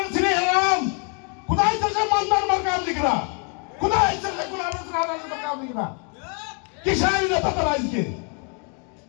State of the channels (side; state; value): right; quieter; 37.1 dB